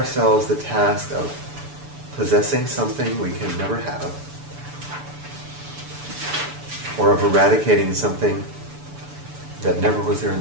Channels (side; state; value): left; late; 6.9 ms